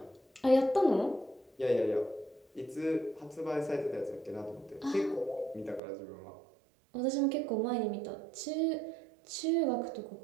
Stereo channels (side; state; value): left; drops out; at 5.8 s